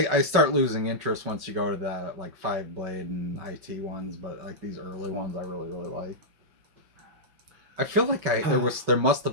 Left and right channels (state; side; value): late; left; 5.3 ms